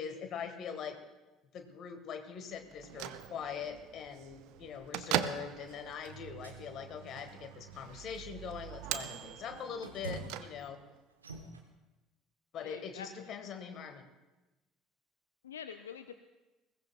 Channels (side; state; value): both; normal; correlation 0.31